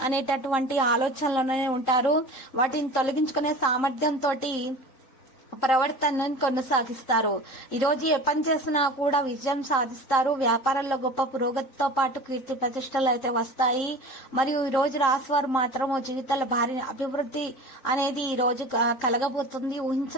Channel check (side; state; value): right; late; 3.7 ms